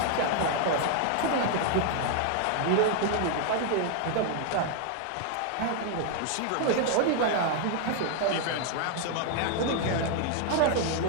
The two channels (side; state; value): both; different; correlation 0.00